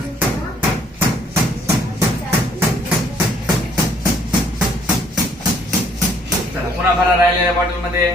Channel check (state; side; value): normal; both; correlation 0.63